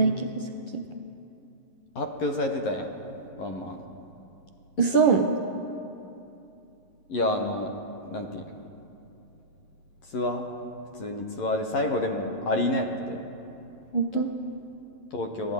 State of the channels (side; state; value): right; late; 11 ms